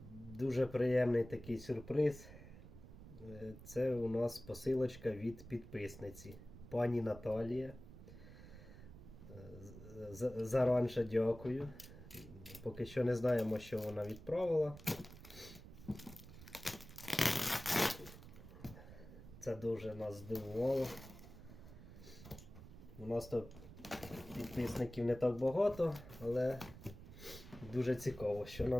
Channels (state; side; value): noise; right; rumble, 15 dB below the sound